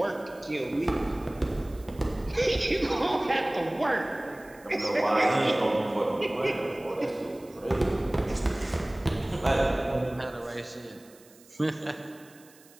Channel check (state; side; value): noise; right; hiss, 26 dB below the sound